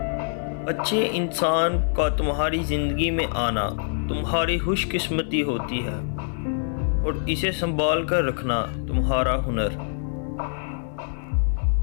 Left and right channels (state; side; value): silent; right; digital silence